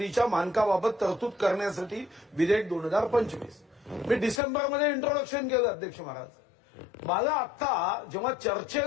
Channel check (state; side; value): drops out; right; at 4.4 s